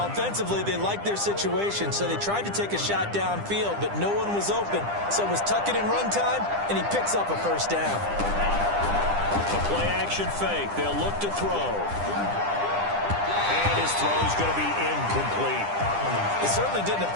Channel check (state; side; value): late; left; 9.9 ms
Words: they liked their situation, so they tried to take a shot downfield, but no one was open. So it was tuck it in run time, and he picks up a first down. A play-action fake. They'll look to throw. And his throw's going to be incomplete. It certainly didn't